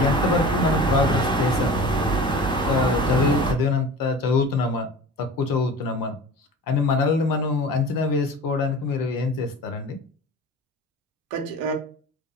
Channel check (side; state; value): both; normal; correlation 0.37